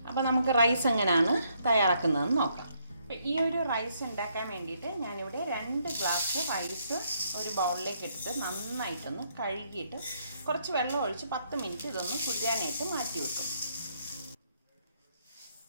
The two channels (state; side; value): inverted; both; correlation -0.73